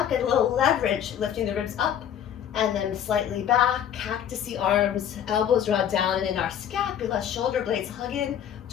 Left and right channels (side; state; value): right; quieter; 9.5 dB